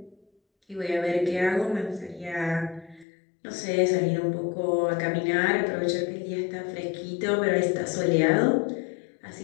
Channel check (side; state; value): right; drops out; at 3.1 s